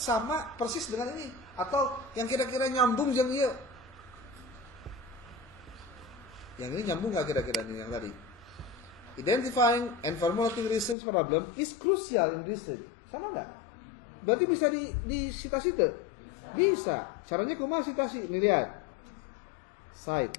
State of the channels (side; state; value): right; drops out; at 11.0 s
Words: persis dengan ini, atau yang kira-kira nyambung jeung ieu. Yang ini nyambung nggak kira-kira nih yang tadi? Identifying and formulating research problem is crucial in research. Sama nggak? Berarti bisa di cita-cita? Bisa. Caranya kumaha citasi? Nih lihat.